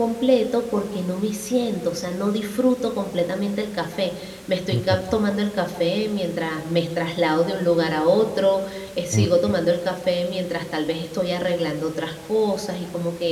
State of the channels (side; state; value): both; identical; correlation 1.00